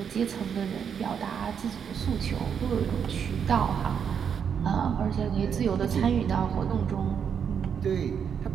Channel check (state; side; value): quieter; left; 7.5 dB